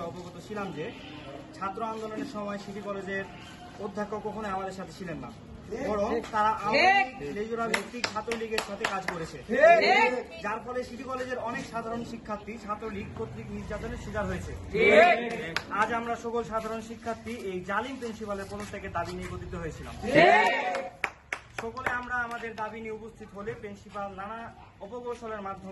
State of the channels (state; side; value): identical; both; correlation 1.00